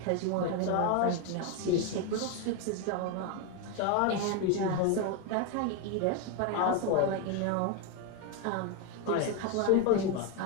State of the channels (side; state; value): both; different; correlation 0.02